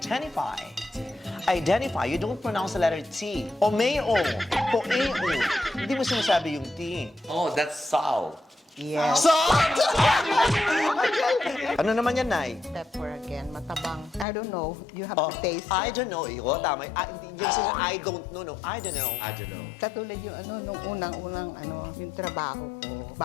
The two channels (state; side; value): drops out; right; at 14.2 s